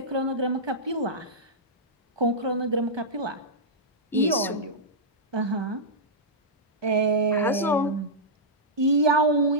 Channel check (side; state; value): both; normal; correlation -0.10